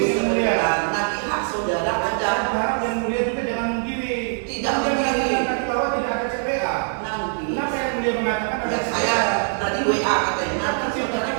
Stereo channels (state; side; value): silent; left; 64 dB below the other